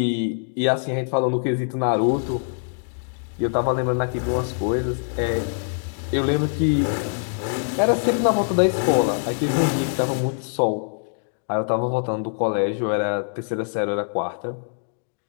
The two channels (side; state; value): right; silent; digital silence